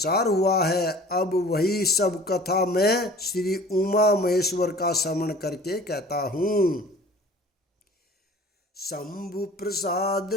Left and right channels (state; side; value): normal; both; correlation 0.46